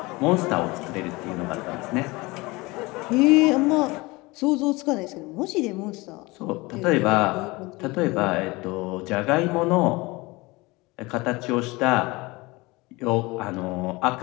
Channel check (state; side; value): quieter; right; 23.2 dB